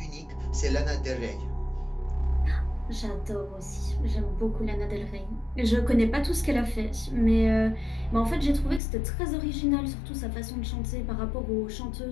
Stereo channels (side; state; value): right; drops out; at 8.8 s